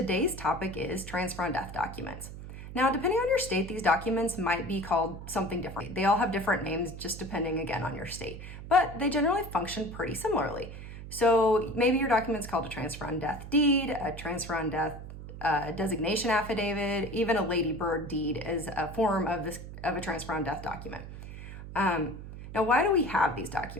topic is transfer on death documents. Now, depending on your state, these documents might be called something different. They all have different names, just depending again on your state, but they generally function pretty similarly. So maybe your document's called a transfer on death deed, a transfer on death designation affidavit, even a ladybird deed is a form of a transfer on death document. Now, why do we have these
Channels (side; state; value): right; noise; hum, 11 dB below the sound